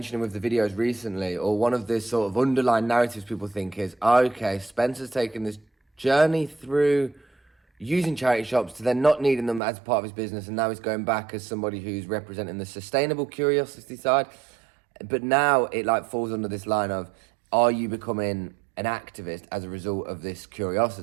with the videos recently, or one of the sort of underlying narratives people think is, okay, Spencer's taken this journey through using charity shops to then not needing them as part of his business, and now he's going back as somebody who's representing the sustainable curiosity side. But now it like falls under this line of, are you becoming an activist as a result of this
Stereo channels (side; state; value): left; drops out; at 9.6 s